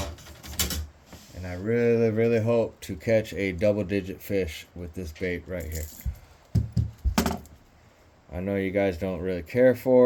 And I really, really hope to catch a double-digit fish with this bait right here. I know you guys don't really care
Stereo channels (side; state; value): both; identical; correlation 1.00